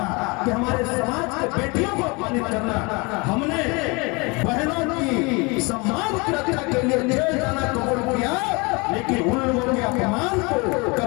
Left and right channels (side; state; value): right; quieter; 28.0 dB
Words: कि हमारे समाज के बेटियों को अपमानित करना। हमने बहनों की सम्मान की रक्षा के लिए जेल जाना कबूल किया, लेकिन उन लोगों के अपमान को